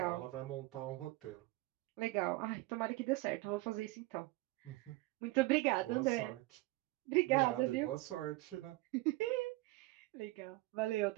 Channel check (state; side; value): quieter; left; 20.4 dB